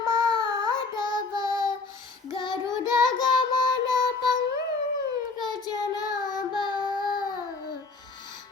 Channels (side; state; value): right; quieter; 4.0 dB